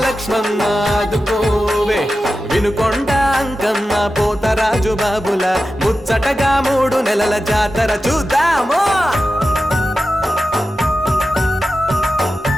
ఆదుకోవే వినుకొండ అంకమ్మ పోతరాజు బాబుల ముచ్చటగా 3 నెలల జాతర చూద్దాము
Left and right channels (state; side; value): normal; both; correlation 0.92